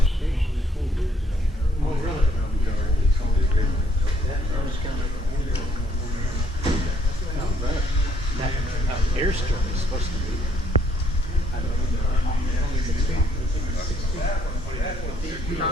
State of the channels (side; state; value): both; normal; correlation 0.67